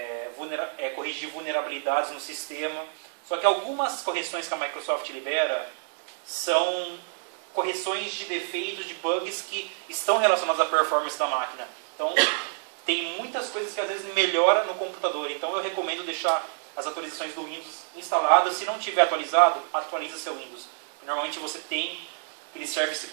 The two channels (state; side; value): silent; left; 59 dB below the other